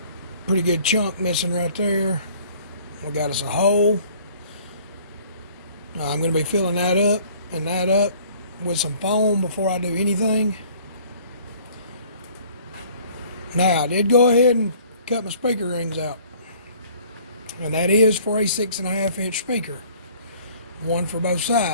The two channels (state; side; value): inverted; both; correlation -0.54